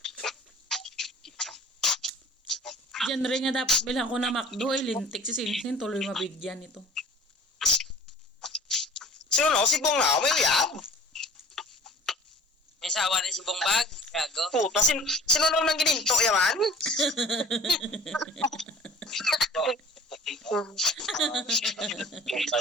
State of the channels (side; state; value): both; normal; correlation 0.46